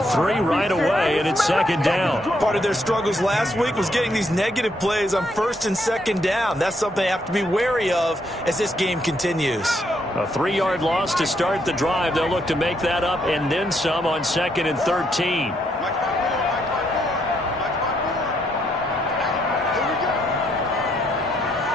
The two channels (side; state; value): both; normal; correlation 0.74